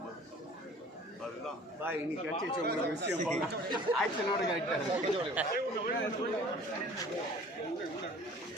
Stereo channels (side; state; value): both; normal; correlation 0.48